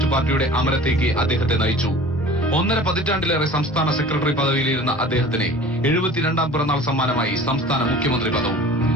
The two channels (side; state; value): both; normal; correlation 0.43